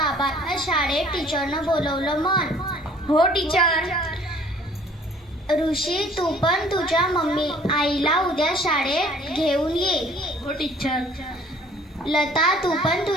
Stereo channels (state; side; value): normal; both; correlation 0.55